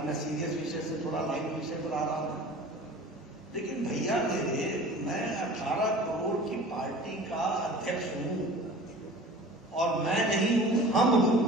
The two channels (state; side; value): normal; both; correlation 0.42